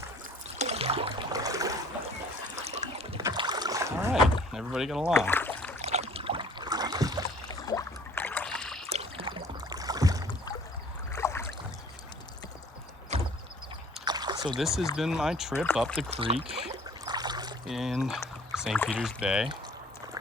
All right, everybody get along. So this has been my trip up the creek in St. Peter's Bay.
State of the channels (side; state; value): both; normal; correlation 0.52